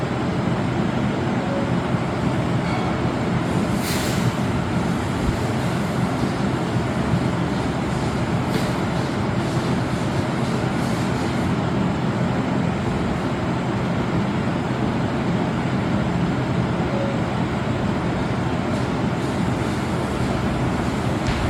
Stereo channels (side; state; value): both; identical; correlation 1.00